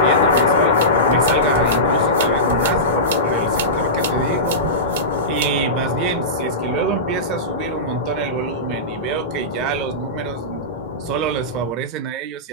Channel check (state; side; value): normal; both; correlation -0.18